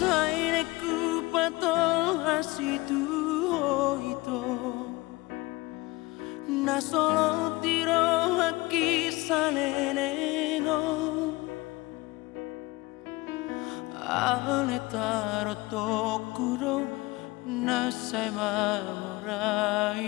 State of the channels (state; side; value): quieter; right; 21.9 dB